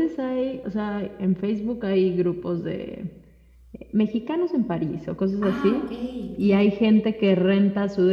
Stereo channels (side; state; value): both; identical; correlation 1.00